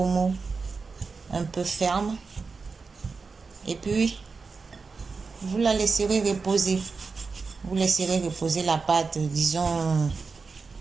mou. Un peu ferme. Et puis, vous la laisserez reposer. Vous laisserez reposer la pâte, disons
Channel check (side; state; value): left; quieter; 4.6 dB